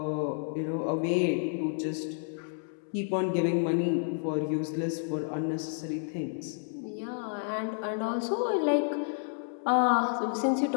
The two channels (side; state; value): right; silent; 58 dB below the other